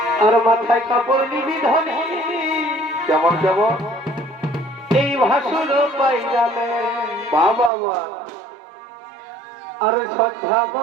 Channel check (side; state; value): left; drops out; at 7.7 s